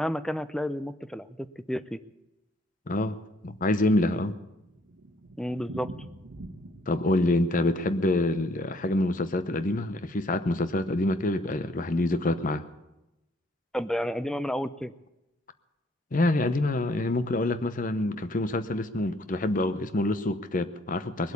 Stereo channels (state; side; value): normal; both; correlation 0.65